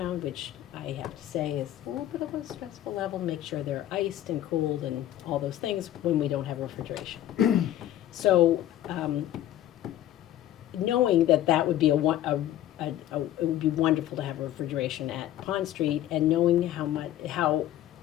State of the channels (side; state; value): right; quieter; 12.7 dB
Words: which I have to say is a little bit of a stressful level, make sure they're iced and cooled and all those things when we don't have refrigeration. So, knowing that would be it would be wonderful to have refrigeration at Pond Street, and knowing how